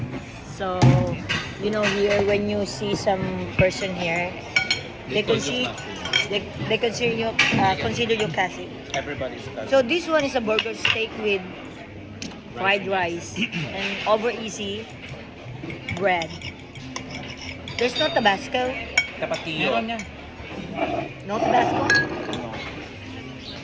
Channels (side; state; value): both; identical; correlation 1.00